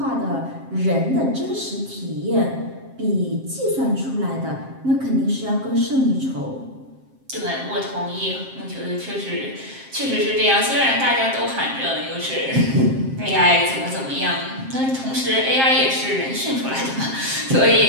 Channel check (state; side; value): late; left; 7.5 ms